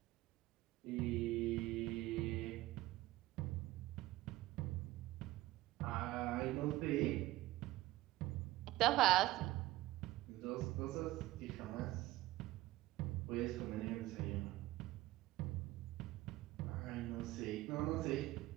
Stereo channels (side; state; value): left; quieter; 17.2 dB